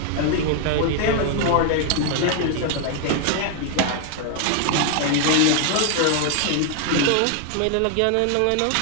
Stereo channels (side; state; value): both; different; correlation 0.00